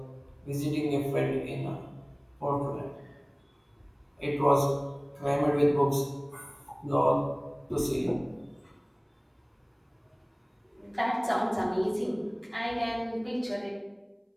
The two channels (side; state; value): both; identical; correlation 1.00